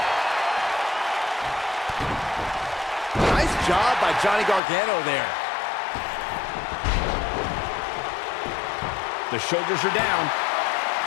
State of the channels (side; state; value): right; drops out; at 4.6 s